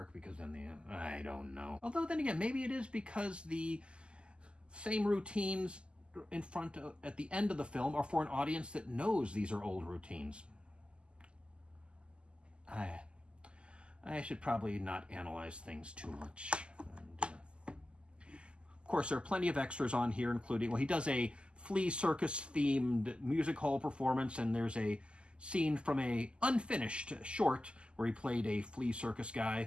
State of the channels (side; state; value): left; late; 0.051 ms